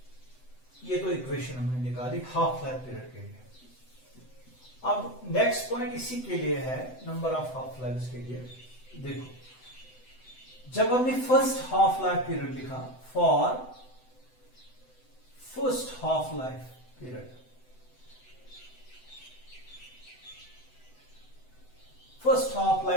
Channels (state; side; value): late; right; 7.9 ms